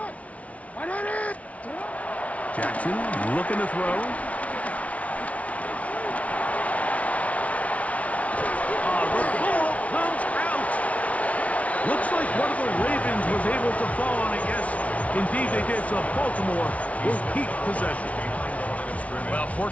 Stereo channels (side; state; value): right; late; 0.066 ms